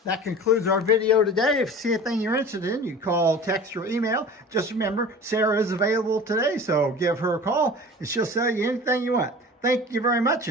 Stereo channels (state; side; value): normal; both; correlation 0.38